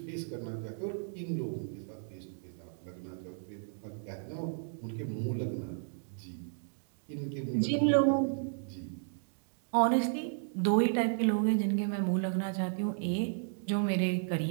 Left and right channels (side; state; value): left; silent; digital silence